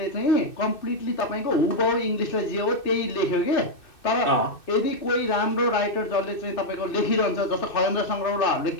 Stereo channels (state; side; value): late; right; 2.6 ms